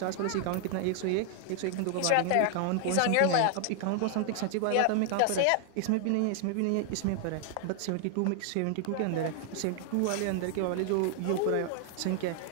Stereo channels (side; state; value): both; different; correlation 0.00